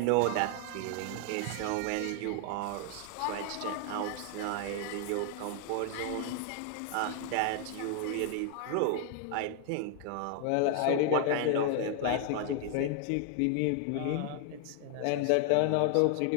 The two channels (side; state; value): both; different; correlation 0.00